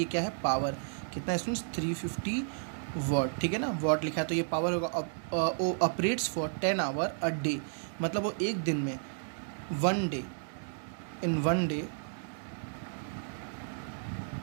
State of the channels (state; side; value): silent; left; 56 dB below the other